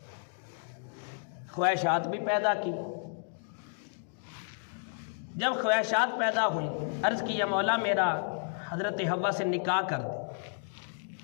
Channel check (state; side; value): silent; right; digital silence